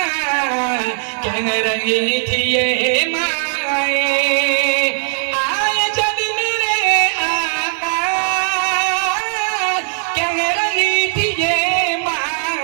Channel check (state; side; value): silent; left; digital silence